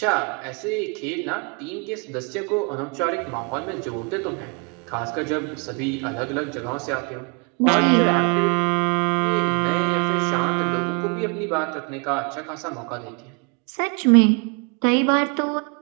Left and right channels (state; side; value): quieter; left; 35.5 dB